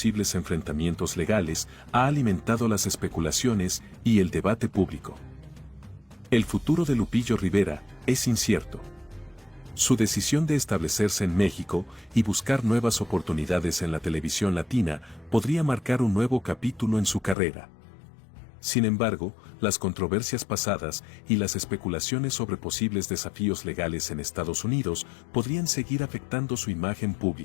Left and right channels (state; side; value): drops out; right; at 17.4 s